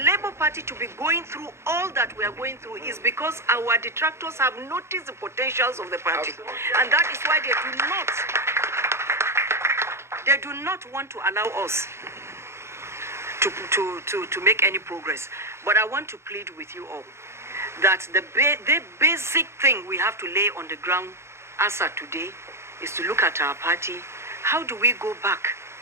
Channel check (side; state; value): left; late; 0.13 ms